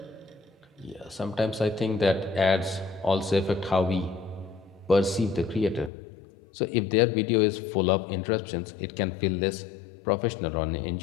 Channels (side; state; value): right; drops out; at 5.9 s